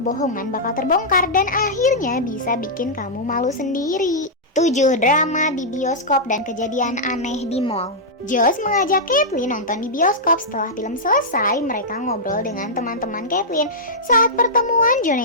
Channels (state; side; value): normal; both; correlation -0.09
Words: bakal terbongkar dan akhirnya bisa bikin kamu malu sendiri. 7. Drama di bioskop dan kejadian aneh di mall. Josh mengajak Caitlin nonton di bioskop. Setelah film selesai, mereka ngobrol dengan teman-teman Caitlin. Saat pertemuan,